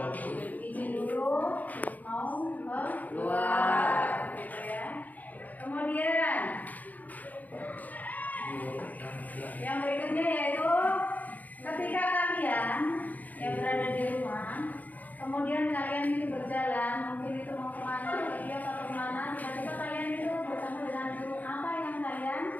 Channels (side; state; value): right; late; 0.080 ms